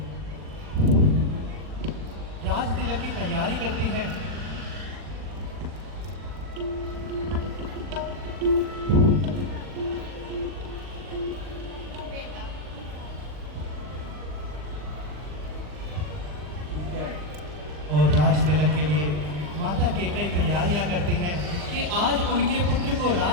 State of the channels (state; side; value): late; left; 40 ms